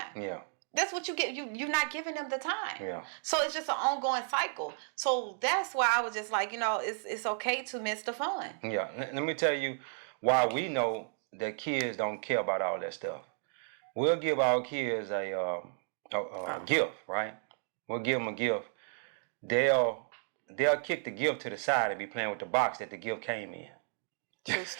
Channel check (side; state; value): left; silent; digital silence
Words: Yeah. That's what you get. You're not giving them the time. Yeah. So it's just an ongoing cycle. So that's why I was just like, it's okay to miss the fun. Yeah. Let me tell you why we know that kids don't care about all that stuff. We'll give our kids a gift, right? We'll give them a gift. They'll kick the gift to the side and be playing with the box that the gift came in. True